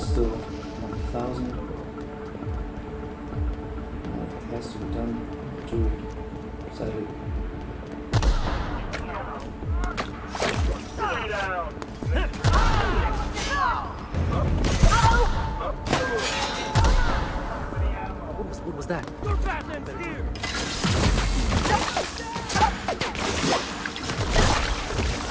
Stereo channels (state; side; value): identical; both; correlation 1.00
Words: 1000. It has to be done. Do it. Sadly. What was that?